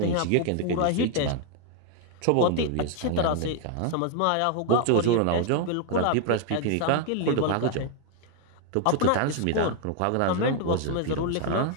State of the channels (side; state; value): both; different; correlation 0.00